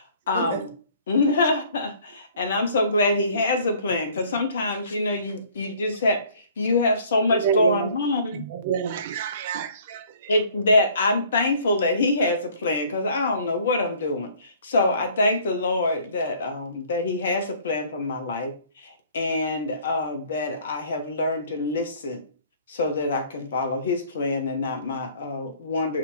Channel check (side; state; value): both; inverted; correlation -0.55